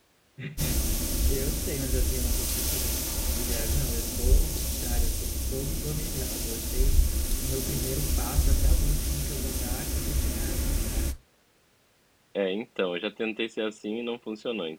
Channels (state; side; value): identical; both; correlation 1.00